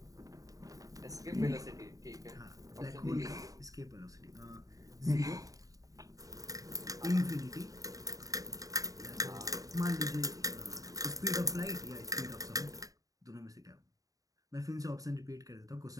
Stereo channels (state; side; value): late; left; 0.17 ms